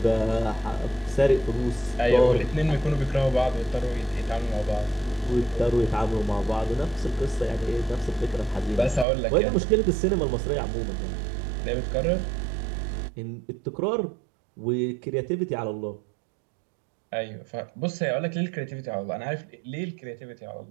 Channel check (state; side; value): drops out; left; at 9.1 s